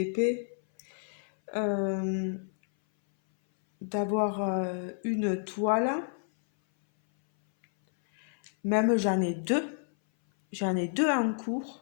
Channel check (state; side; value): silent; right; 58 dB below the other